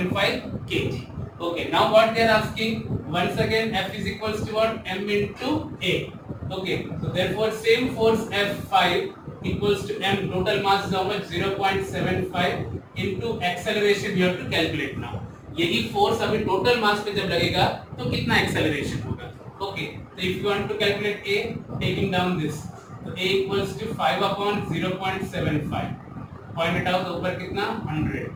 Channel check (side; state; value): both; identical; correlation 1.00